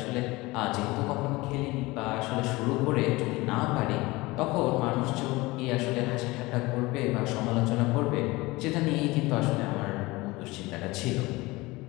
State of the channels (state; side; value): quieter; right; 21.6 dB